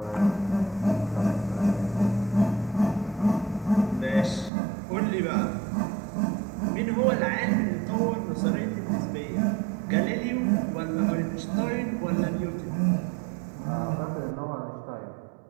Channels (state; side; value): drops out; left; at 4.5 s